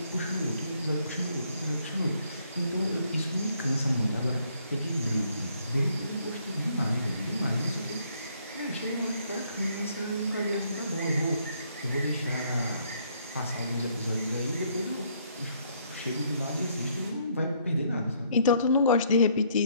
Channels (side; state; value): both; inverted; correlation -0.67